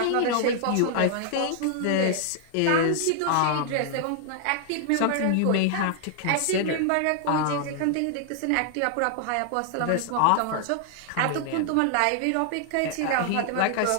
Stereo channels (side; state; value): both; different; correlation 0.00